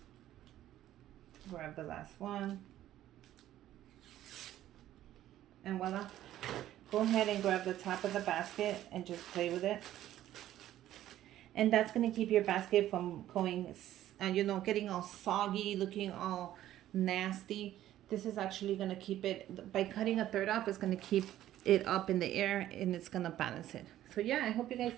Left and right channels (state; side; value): quieter; left; 13.1 dB